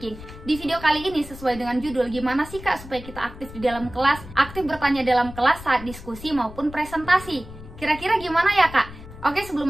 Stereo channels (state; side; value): noise; left; rumble, 15 dB below the sound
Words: Di video kali ini sesuai dengan judul, gimana sih kak supaya kita aktif di dalam kelas, aktif bertanya dalam kelas saat diskusi maupun presentasi. Kira-kira gimana ya kak? Oke, sebelum